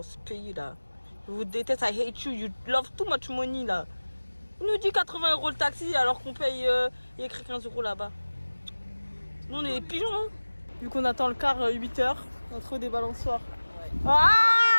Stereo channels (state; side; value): inverted; both; correlation -1.00